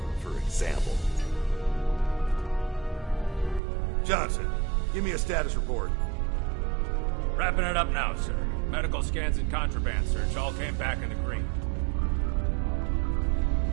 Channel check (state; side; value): drops out; left; at 3.6 s